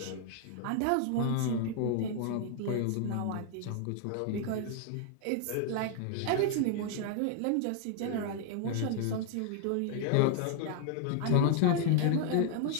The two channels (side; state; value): both; different; correlation 0.00